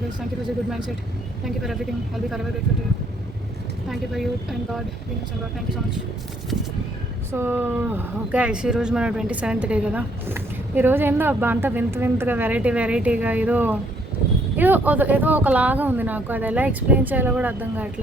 Thank you for this good mindset. Thank you for everything. I'll be forever grateful to you. Thank you for you and God, universe and God. Thank you so much. So guys, ఈరోజు మన 27th day కదా. ఈరోజు ఏందో అబ్బా అంతా వింతగా వెరైటీగా ఏదో ఒకలాగా ఉంది నాకు. అది ఎలా ఎక్స్ప్లెయిన్ చేయాలో కూడా అర్థం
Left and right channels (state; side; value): normal; both; correlation 0.67